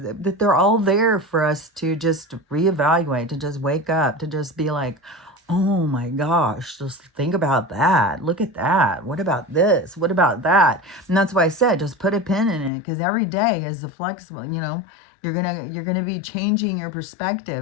all there for us to just reevaluate, to just wake up, to just be like, oh my gosh, just think about that. Look at that. What about this? What about that? And that's why I said, just put a pin in it, because every day is a flexible, you're gonna be changing your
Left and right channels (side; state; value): right; drops out; at 12.7 s